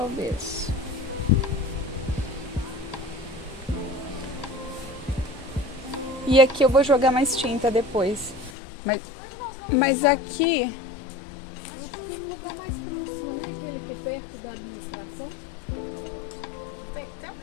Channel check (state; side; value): drops out; right; at 8.5 s